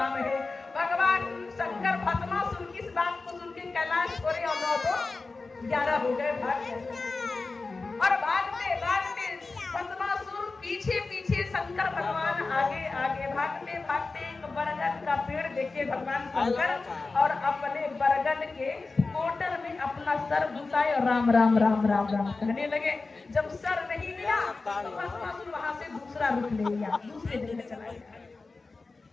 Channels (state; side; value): quieter; right; 3.8 dB